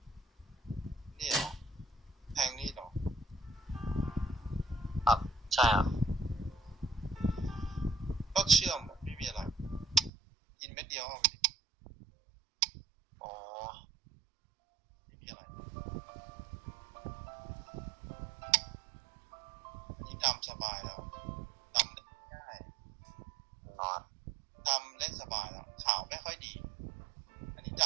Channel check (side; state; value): left; drops out; at 10.1 s